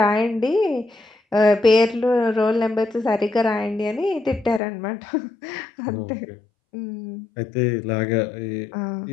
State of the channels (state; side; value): drops out; right; at 4.6 s